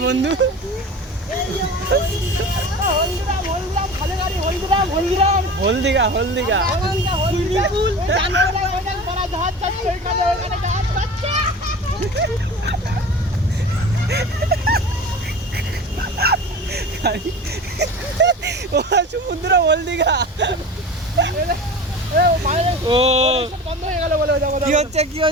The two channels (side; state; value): both; normal; correlation 0.35